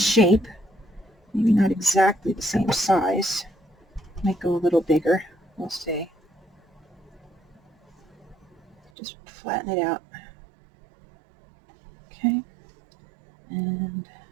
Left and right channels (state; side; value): drops out; left; at 8.9 s